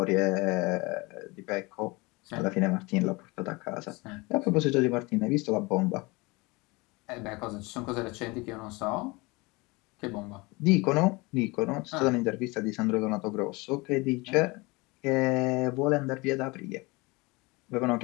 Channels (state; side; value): quieter; right; 24.8 dB